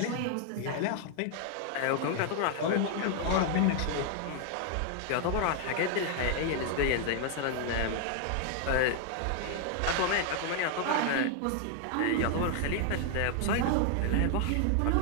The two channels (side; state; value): both; different; correlation 0.00